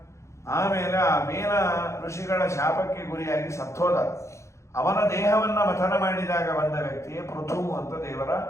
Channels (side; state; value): right; late; 0.14 ms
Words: ಆಮೇಲೆ ಆ ವೇನ ಋಷಿಗಳ ಶಾಪಕ್ಕೆ ಗುರಿಯಾಗಿ ಸತ್ತೋದ. ಅವನ ದೇಹವನ್ನ ಮಥನ ಮಾಡಿದಾಗ ಬಂದ ವ್ಯಕ್ತಿಯೇ ಪೃಥು ಅಂತ ದೇವರ